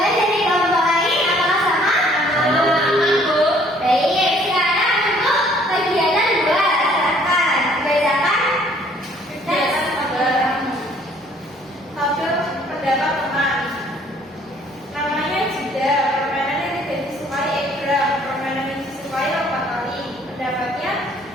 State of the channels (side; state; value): both; normal; correlation 0.60